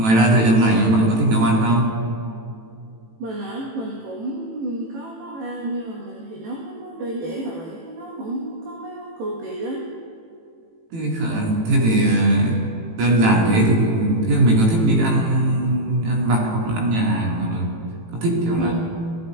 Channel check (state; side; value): late; left; 18 ms